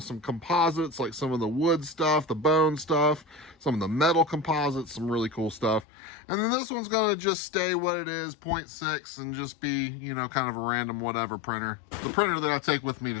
some composites, like some of the wood stuff, the bone stuff, some of the metal composites, some really cool stuff. And then this one's going to just stay what it is, 0.6, and just be, you know, kind of a random whatever printer. The printer that I take with me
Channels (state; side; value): drops out; right; at 5.9 s